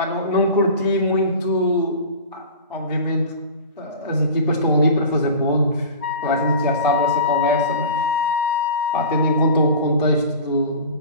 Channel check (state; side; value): inverted; both; correlation -0.36